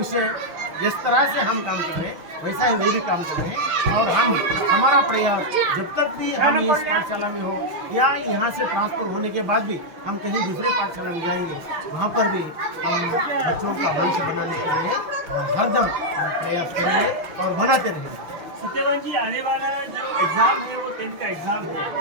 जिस तरह से हम काम कर रहे हैं वैसा ही वे भी काम कर रहे हैं। और हमारा प्रयास जब तक भी हम इस पाठशाला में हो या यहाँ से ट्रांसफर होने के बाद भी हम कहीं दूसरे पाठशाला में जाएंगे, वहाँ पर भी हम बच्चों का भविष्य बनाने के लिए हरदम प्रयास करेंगे और बनाते रहेंगे। सत्यवान जी, आने वाला जो एग्ज़ाम है वो 10th का एग्ज़ाम है,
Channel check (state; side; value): late; left; 6.2 ms